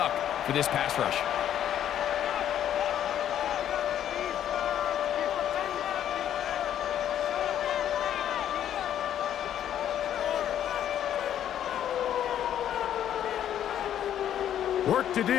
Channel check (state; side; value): quieter; right; 10.5 dB